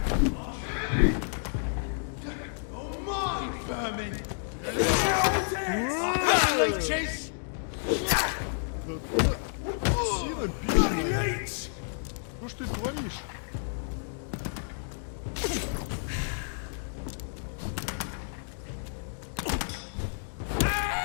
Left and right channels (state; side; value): silent; right; digital silence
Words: Oh my vermin. Да ты сина бешеная. Что ж ты творишь?